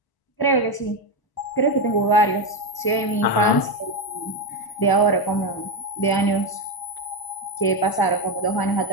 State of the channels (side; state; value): right; late; 1.0 ms